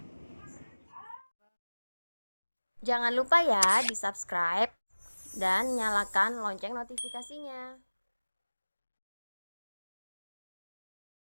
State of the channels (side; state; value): both; inverted; correlation -1.00